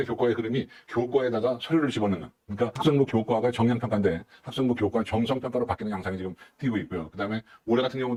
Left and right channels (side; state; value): both; identical; correlation 1.00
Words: 교과의 흐름이 교과에다가 서류를 집어넣는 그러니까 학생부 교과가 정량평가인데 학생부 교과 정성평가로 바뀌는 양상이 지금 띄고 있고요. 그 다음에 올해 같은